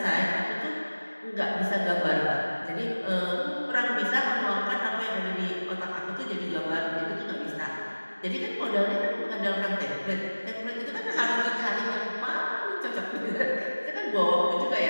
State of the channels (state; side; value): inverted; both; correlation -1.00